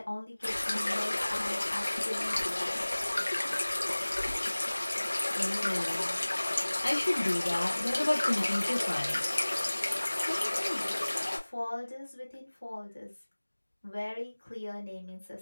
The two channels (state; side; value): inverted; both; correlation -1.00